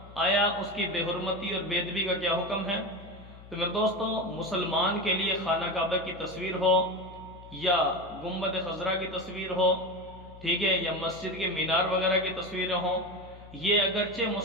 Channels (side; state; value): left; noise; hum, 18 dB below the sound